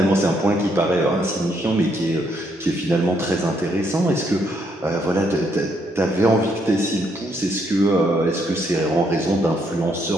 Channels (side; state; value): both; normal; correlation 0.73